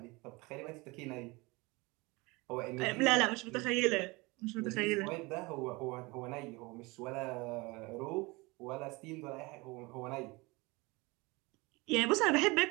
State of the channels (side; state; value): left; quieter; 24.7 dB